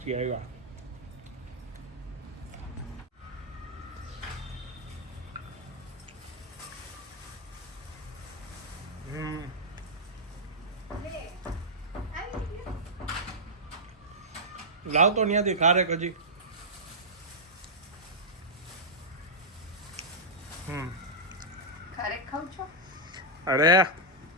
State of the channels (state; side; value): normal; both; correlation -0.10